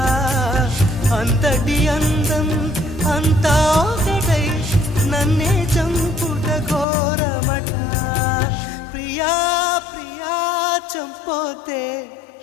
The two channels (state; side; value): drops out; right; at 6.9 s